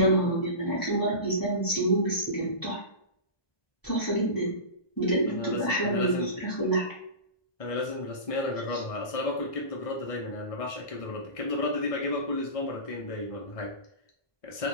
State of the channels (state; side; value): late; right; 1.2 ms